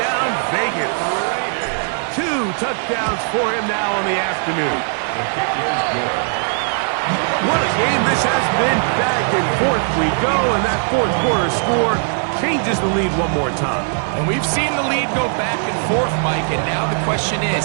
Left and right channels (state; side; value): silent; left; 59 dB below the other